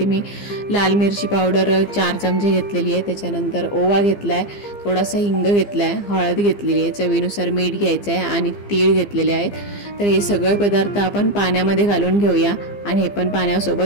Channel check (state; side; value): late; right; 15 ms